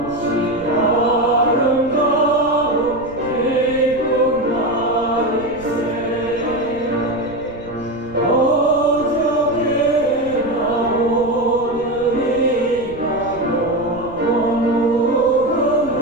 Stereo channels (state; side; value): noise; right; rumble, 19 dB below the sound